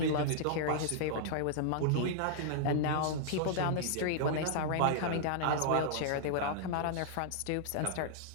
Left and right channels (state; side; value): different; both; correlation -0.01